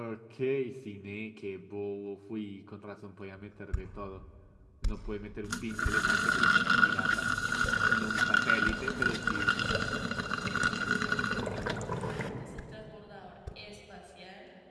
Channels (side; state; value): both; identical; correlation 1.00